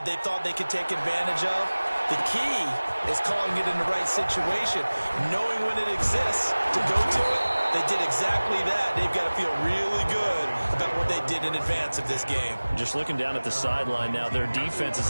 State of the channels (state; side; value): inverted; both; correlation -1.00